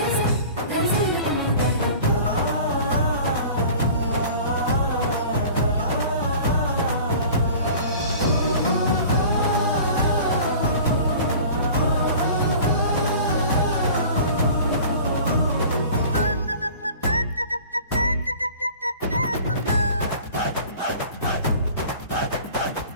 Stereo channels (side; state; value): both; inverted; correlation -0.43